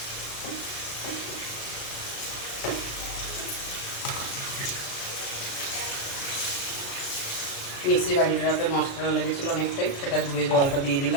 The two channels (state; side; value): late; right; 36 ms